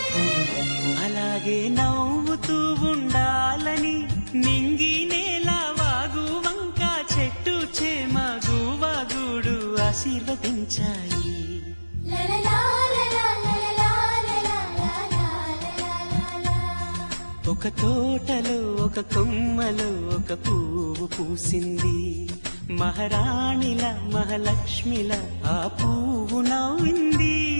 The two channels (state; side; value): inverted; both; correlation -1.00